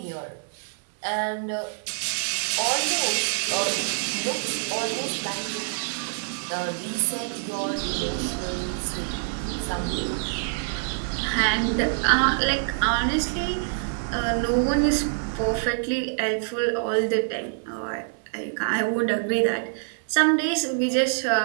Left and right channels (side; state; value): left; silent; 61 dB below the other